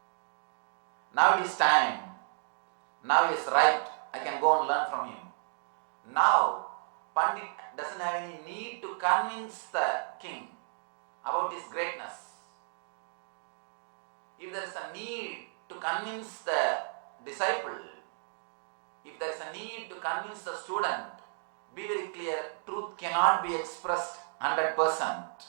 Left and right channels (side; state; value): left; silent; digital silence